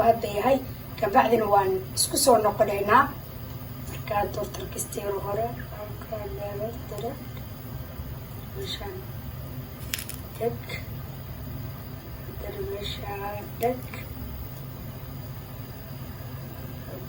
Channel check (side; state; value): both; identical; correlation 1.00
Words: هذا هاي كبعدين وان اسكسو نقلينا بركة دورتر كستيرو هورا بركة مشان تك دك